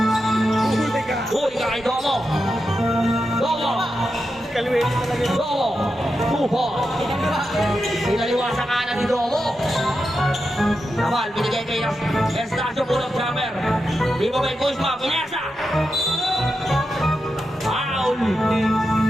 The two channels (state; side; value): normal; both; correlation 0.88